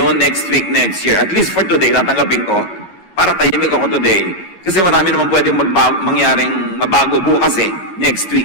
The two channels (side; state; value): right; late; 11 ms